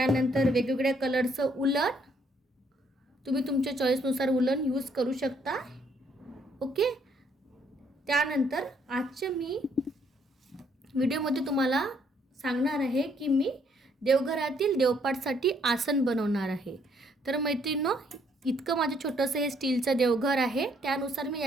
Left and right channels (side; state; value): both; normal; correlation 0.68